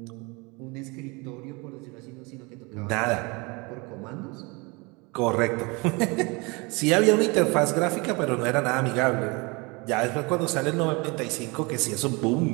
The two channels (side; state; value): left; quieter; 27.7 dB